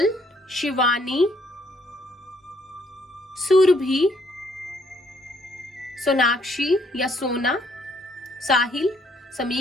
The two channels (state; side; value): normal; both; correlation 0.68